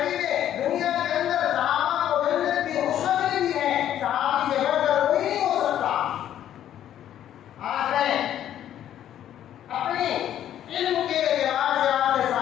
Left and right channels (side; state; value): right; quieter; 11.1 dB